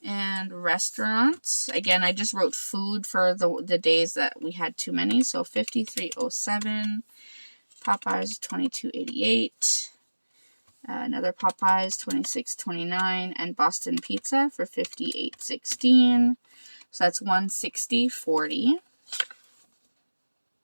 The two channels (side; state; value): both; inverted; correlation -1.00